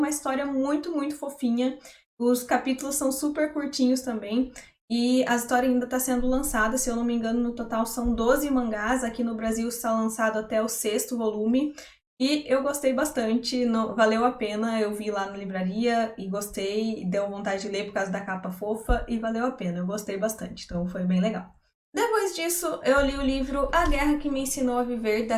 história muito, muito fofinha. Os capítulos são super curtinhos também. E a história ainda está sendo lançada, se eu não me engano, no total são 12 mangás. Aqui no Brasil está lançado até o 6º volume. E eu gostei bastante, valeu a pena, eu vi lá na livraria e gostei, deu vontade de ler por causa da capa fofa e valeu a pena, eu gostei bastante, então foi bem legal. Depois disso, eu li o livro A Guerra que Me Ensinou a Viver,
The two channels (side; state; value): both; identical; correlation 1.00